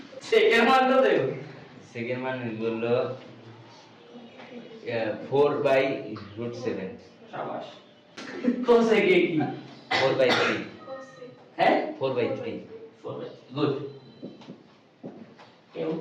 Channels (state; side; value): identical; both; correlation 1.00